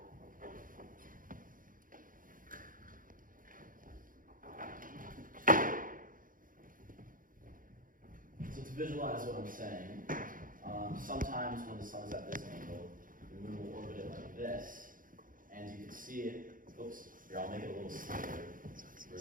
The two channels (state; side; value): late; left; 0.40 ms